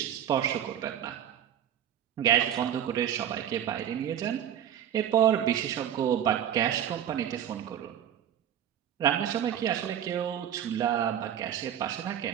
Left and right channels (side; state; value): left; quieter; 10.1 dB